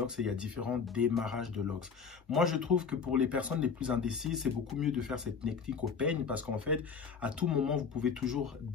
et il y a différents démarrages de locks. Moi, je trouve que pour les personnes les plus indécises, c'est beaucoup mieux de faire cette technique au peigne, parce qu'en fait, à tout moment, vous pouvez toujours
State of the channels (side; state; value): right; quieter; 5.9 dB